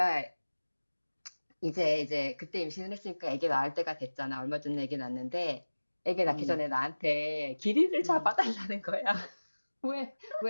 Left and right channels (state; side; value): inverted; both; correlation -1.00